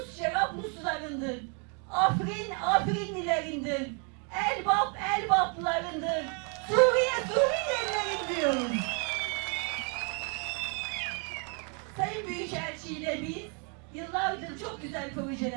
Cerabluslarındır. Afrin, Afrinlilerindir. Elbap, Elbaplarındır. Suriye, Suriyelilerin diyoruz. Sayın Büyükelçi ile biz yıllardır çok güzel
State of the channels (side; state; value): left; quieter; 37.2 dB